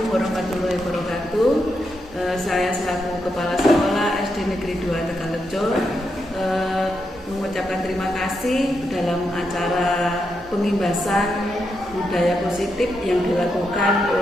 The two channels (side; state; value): both; normal; correlation 0.83